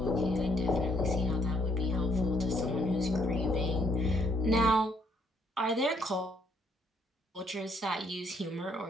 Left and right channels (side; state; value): both; normal; correlation 0.68